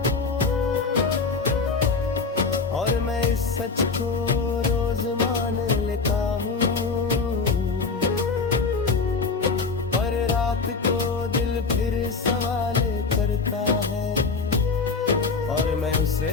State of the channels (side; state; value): right; quieter; 4.5 dB